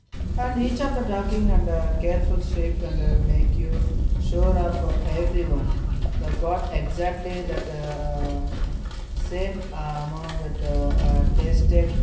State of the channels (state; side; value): identical; both; correlation 1.00